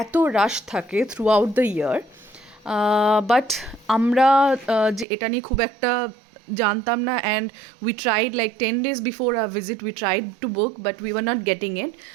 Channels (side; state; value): left; drops out; at 5.1 s